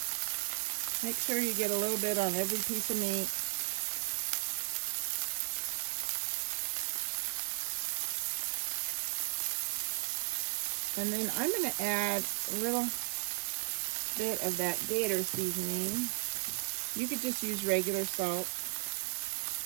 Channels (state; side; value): silent; left; digital silence